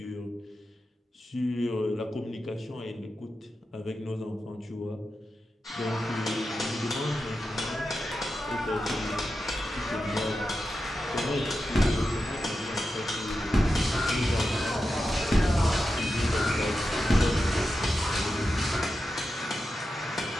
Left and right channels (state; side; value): normal; both; correlation 0.90